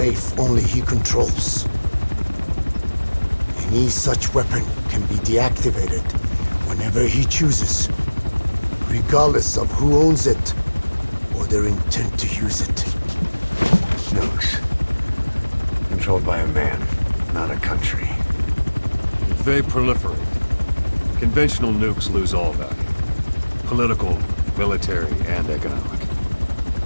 only he controls. Any such weapon can be deactivated whenever he chooses, regardless of who owns it or their intent to use it. Nukes. Controlled by a man, not a country. If they proliferate, conventional nukes lose all value. Political, military, and economic.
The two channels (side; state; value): both; inverted; correlation -1.00